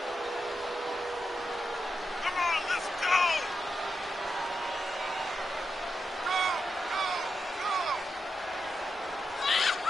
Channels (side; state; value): both; normal; correlation 0.86